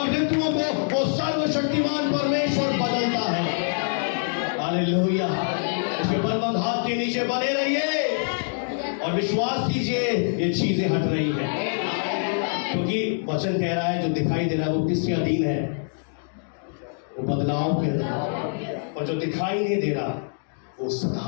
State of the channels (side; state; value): right; silent; digital silence